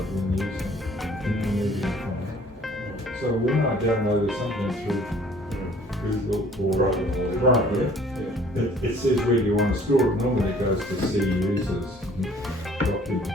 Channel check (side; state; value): both; normal; correlation 0.55